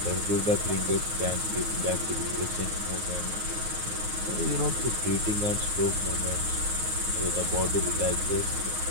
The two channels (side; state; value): left; late; 9.5 ms